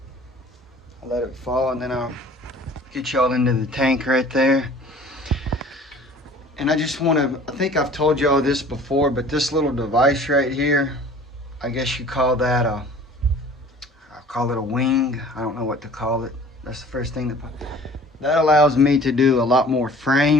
I let it fall and then I'll get y'all into the tank right there. And I just want to, I think I've told y'all this before, but this little device right here, I guess you call that a, I call it a wing. I don't know what to call it. That's the first thing that allows me to do a lot more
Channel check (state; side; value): normal; both; correlation 0.48